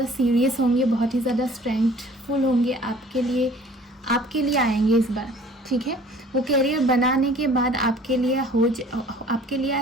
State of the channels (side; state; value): both; normal; correlation 0.51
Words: सीरियस होंगे, बहुत ही ज़्यादा स्ट्रेंथफुल होंगे, आपके लिए आएंगे इस बार, ठीक है। वो कैरियर बनाने के बाद आपके